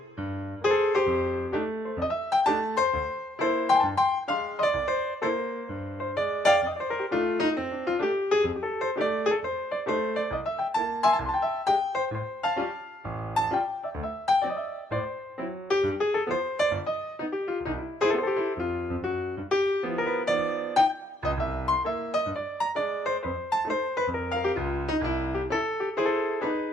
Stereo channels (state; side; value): normal; both; correlation 0.73